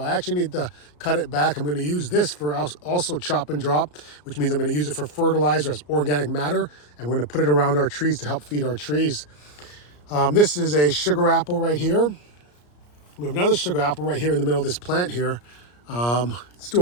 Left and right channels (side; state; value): right; late; 34 ms